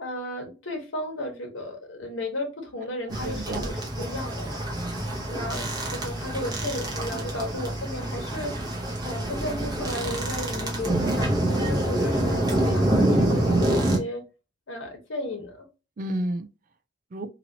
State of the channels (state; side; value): normal; both; correlation 0.63